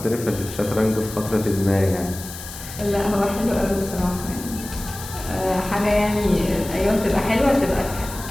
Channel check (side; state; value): left; noise; hiss, 12 dB below the sound